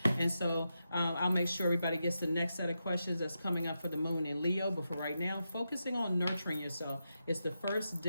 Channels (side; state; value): both; inverted; correlation -0.87